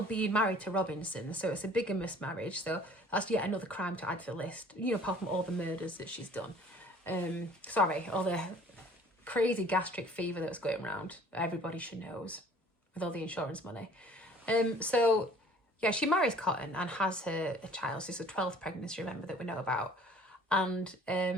being married to Robinson, so it's a bigamous marriage, so that's yet another crime to add to the list, you know, apart from all the murders that she's done. All the crazy gastric fever that was going around, everybody should knows, with all the insurance money. So, yeah, she marries Cotton and has a child, so it's a 12th pregnancy, remember, that we know about, and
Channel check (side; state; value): both; normal; correlation 0.52